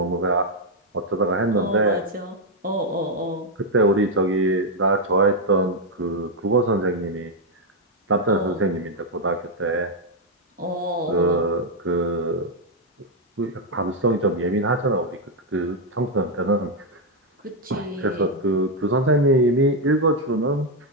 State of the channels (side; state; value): both; normal; correlation 0.01